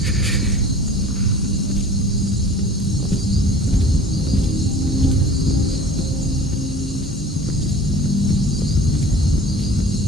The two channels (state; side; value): normal; both; correlation 0.43